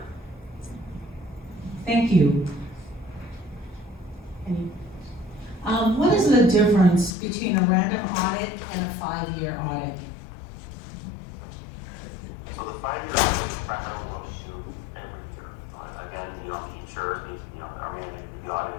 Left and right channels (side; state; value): right; drops out; at 7.2 s